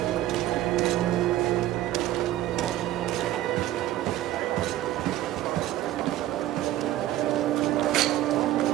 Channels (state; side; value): quieter; left; 14.1 dB